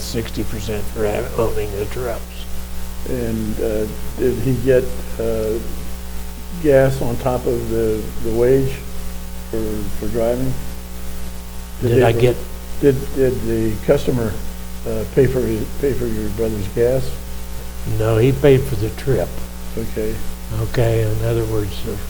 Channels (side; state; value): both; identical; correlation 1.00